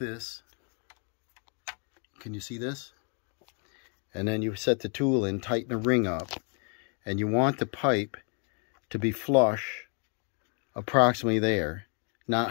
Can you see this? And then you set the tool in, tighten the ring up, and you want the pipe to be flush approximately there, not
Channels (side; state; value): right; quieter; 39.7 dB